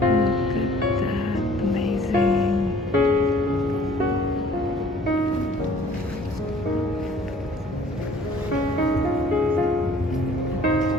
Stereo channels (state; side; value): normal; both; correlation 0.55